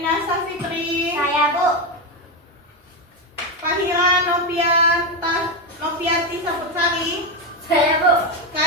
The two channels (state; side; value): normal; both; correlation 0.11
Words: Safitri, Saya, Bu. Fahira Noviati Saputsari, Saya, Bu.